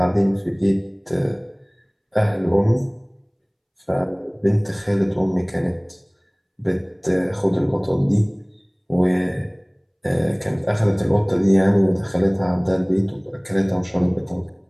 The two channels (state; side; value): identical; both; correlation 1.00